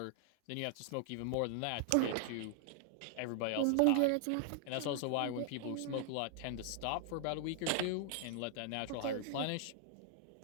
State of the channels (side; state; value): both; different; correlation -0.01